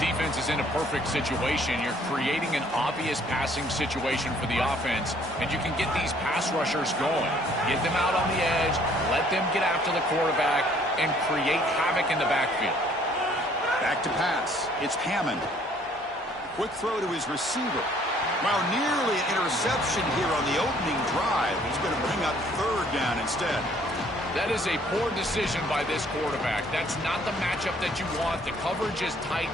is in a perfect situation. You're creating an obvious passing situation for the offense, and you can get these pass rushers going. Get them out on the edge, let them get after the quarterback, and create havoc in the backfield. Back to pass. It's Hammond. Quick throw to his receiver. Wow, nearly an interception here on the opening drive. He's going to bring up third down instead. That is a poor decision by this quarterback. That's not the matchup that you want. The coverage is tight.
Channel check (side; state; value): both; normal; correlation 0.60